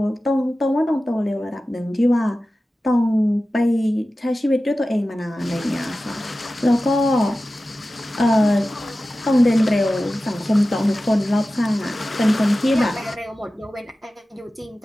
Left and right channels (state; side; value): normal; both; correlation 0.95